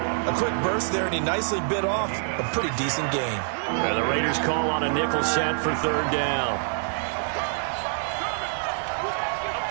A quick burst there, and he nicely bit off a pretty decent game. And the Raiders call on a nickel set for 3rd down.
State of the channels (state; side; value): silent; left; 61 dB below the other